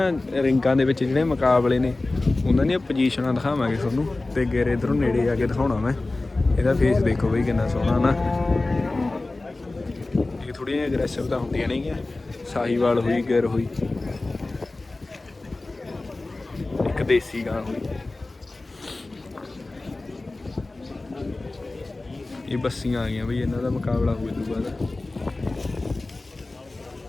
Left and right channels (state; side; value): quieter; right; 3.1 dB